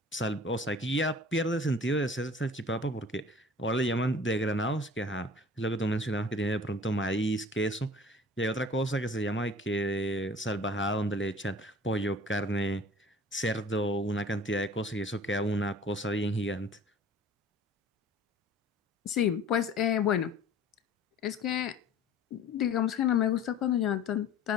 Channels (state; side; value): normal; both; correlation 0.46